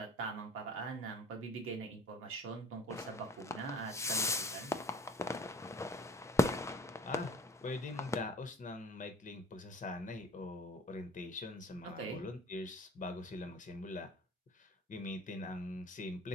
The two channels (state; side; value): normal; both; correlation 0.48